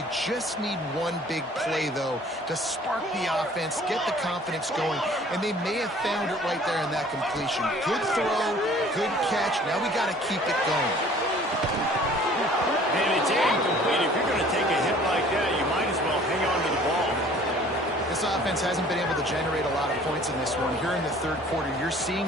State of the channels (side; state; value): both; normal; correlation 0.52